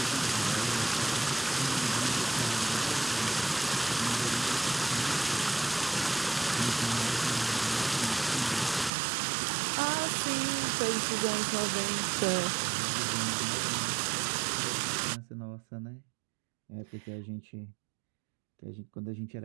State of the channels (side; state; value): left; drops out; at 8.9 s